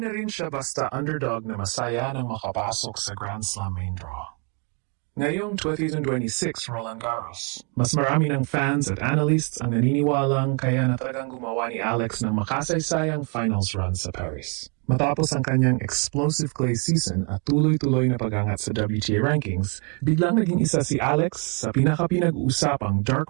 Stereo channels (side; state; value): left; quieter; 36.5 dB